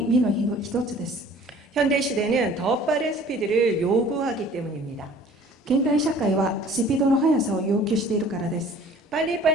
実の一つです。 현대 시대는 더 빠른 스피드를 요구하기 때문입니다. 現代社会はスピードの速さを要求しているからです。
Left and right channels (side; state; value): both; normal; correlation 0.50